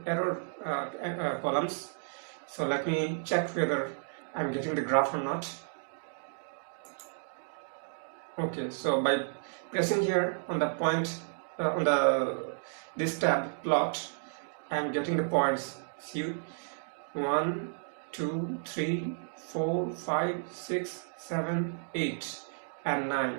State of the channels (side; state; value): left; silent; digital silence